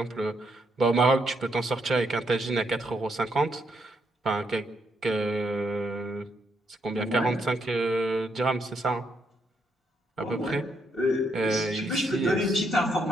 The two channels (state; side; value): normal; both; correlation 0.76